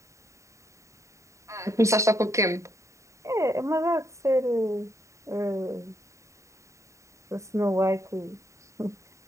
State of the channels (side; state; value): left; late; 0.15 ms